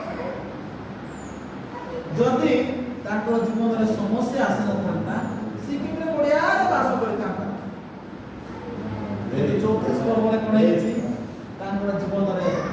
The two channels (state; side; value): identical; both; correlation 1.00